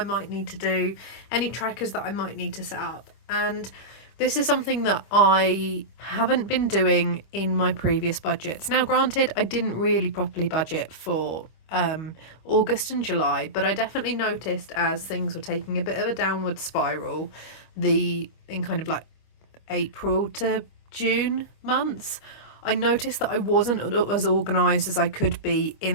might need to do, any trackers that I might need to set up. And this is something that I haven't been doing in my previous budgets. Now, granted, I didn't really properly budget for August and July, but I definitely noticed as things were taking a bit of a downward spiral, in kind of like April to June months, I noticed that I wasn't as organised as I could be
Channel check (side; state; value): right; late; 25 ms